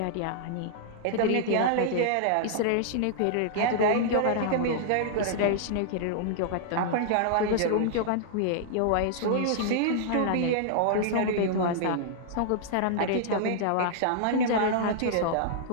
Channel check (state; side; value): different; both; correlation -0.01